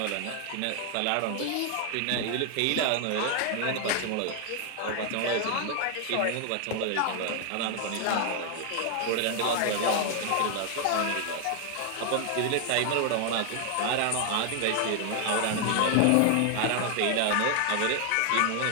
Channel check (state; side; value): different; both; correlation 0.00